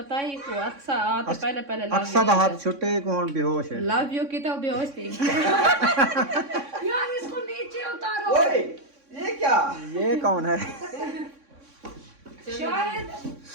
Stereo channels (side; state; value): left; late; 3.6 ms